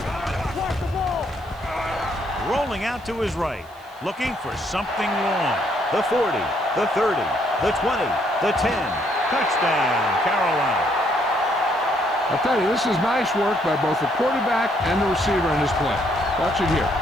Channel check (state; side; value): noise; right; hiss, 28 dB below the sound